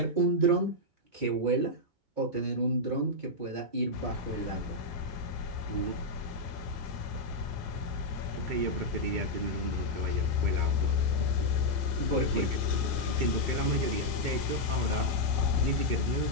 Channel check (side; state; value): left; late; 2.3 ms